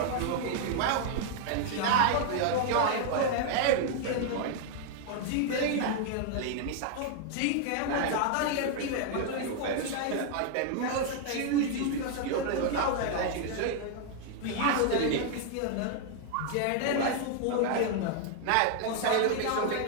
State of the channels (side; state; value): both; different; correlation 0.00